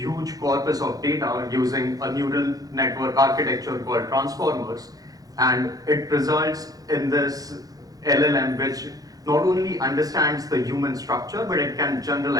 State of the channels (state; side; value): late; left; 0.18 ms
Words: corpus of data using a neural network architecture called transformers, and it results in this LLM which not only understands the human structure, but it can